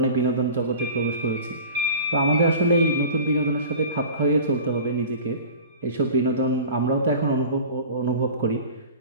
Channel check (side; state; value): both; inverted; correlation -0.39